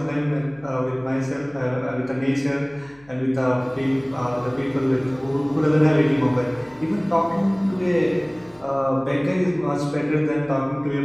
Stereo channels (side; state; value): left; noise; hum, 28 dB below the sound